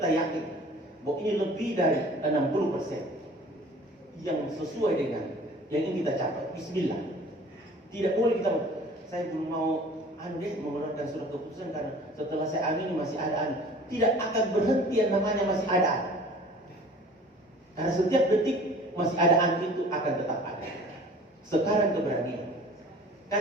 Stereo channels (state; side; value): normal; both; correlation 0.47